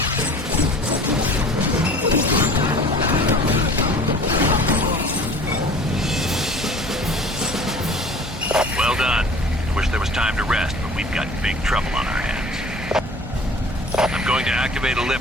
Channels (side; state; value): both; normal; correlation 0.45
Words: Well done. I wish there was time to rest, but we've got big trouble on our hands. I'm going to activate a